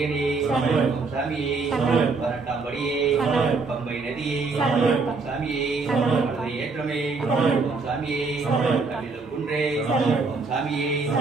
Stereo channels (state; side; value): quieter; left; 4.2 dB